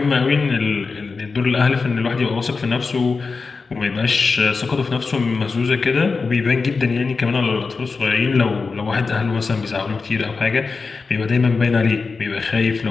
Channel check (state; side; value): quieter; right; 4.5 dB